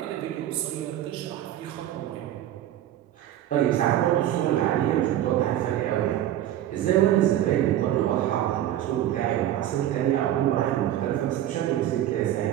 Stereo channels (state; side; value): quieter; left; 12.3 dB